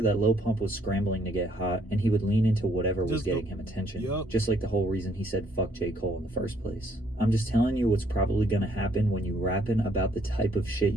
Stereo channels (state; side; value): normal; both; correlation 0.67